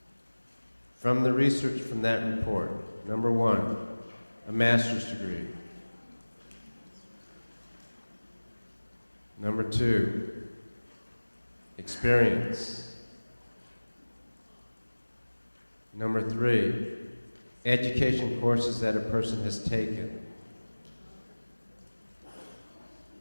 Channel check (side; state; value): both; inverted; correlation -1.00